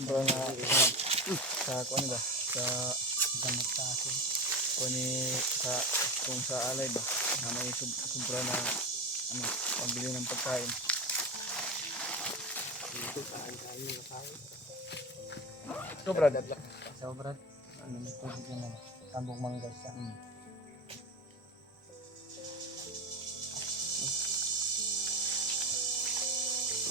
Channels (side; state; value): both; normal; correlation 0.24